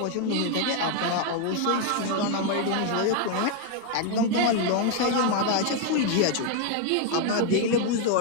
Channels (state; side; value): different; both; correlation 0.01